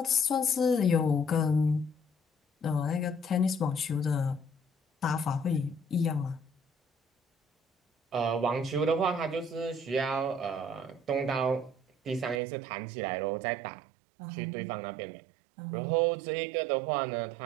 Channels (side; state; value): left; drops out; at 12.4 s